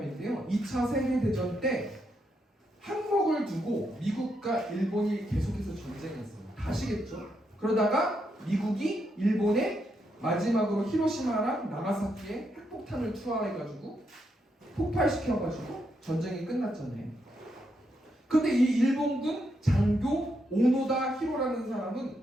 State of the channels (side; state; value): both; normal; correlation 0.80